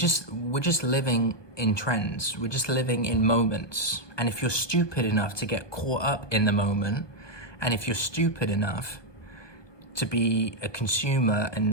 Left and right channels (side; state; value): right; late; 1.2 ms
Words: living in trends. We're just living in moments. And if you're stupid enough to get caught up in the moment, and if you're stupid enough to be a consumer